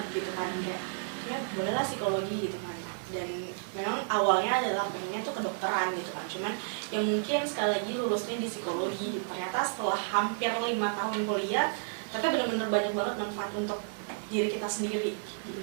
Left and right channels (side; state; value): left; silent; digital silence